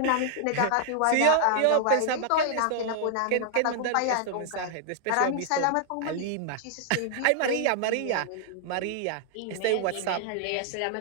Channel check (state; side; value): different; both; correlation -0.01